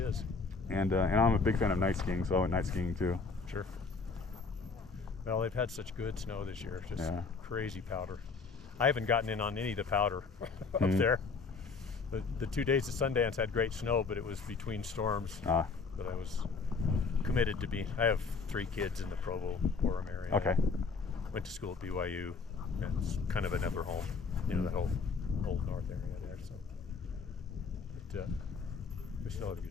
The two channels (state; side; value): quieter; right; 4.6 dB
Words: And I'm a big fan of night skiing, so I went night skiing too. Sure. Well, they've had such good snow this year, just crazy powder. I haven't gotten in on any of the powder up there. The 2 days of Sundance had great snow, but it was between storms. But I was committed to being. I have 3 kids in the Provo-Orem area. Okay. Went to school at BYU, and it's kind of another home, you know, that whole old north area there. So, but we still had a